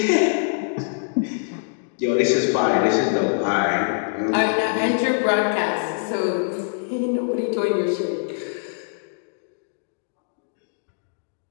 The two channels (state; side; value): silent; right; digital silence